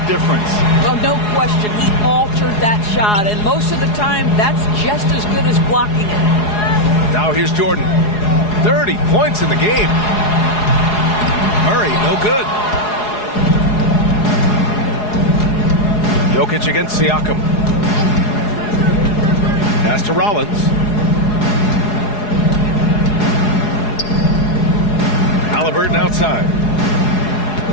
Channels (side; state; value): right; late; 4.8 ms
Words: difference. Well, no question. He altered that shot. And most of the time, that's just as good as blocking it. Now here's Jordan. 30 points in the game. Murray, no good. Jokic against Siakam. Pass to Rollins. Halliburton outside.